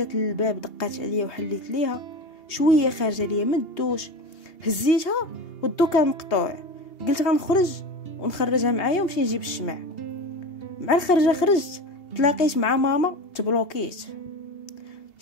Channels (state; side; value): late; right; 2.8 ms